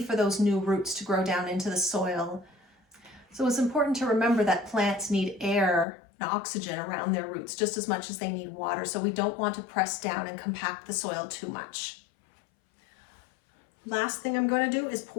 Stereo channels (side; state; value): right; drops out; at 5.9 s